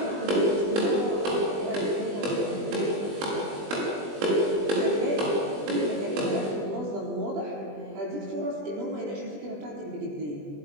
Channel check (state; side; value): late; left; 20 ms